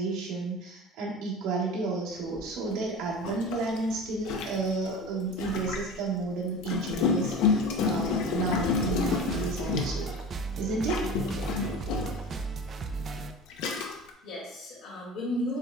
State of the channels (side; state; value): both; normal; correlation 0.33